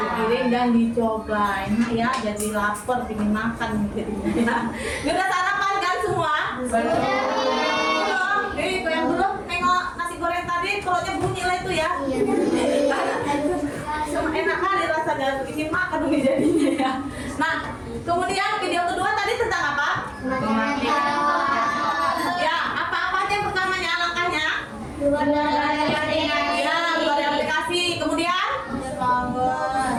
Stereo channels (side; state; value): both; identical; correlation 1.00